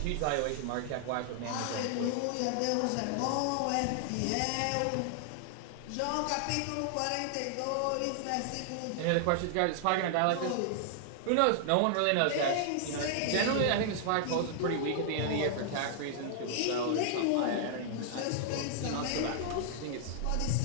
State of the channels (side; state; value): both; different; correlation -0.01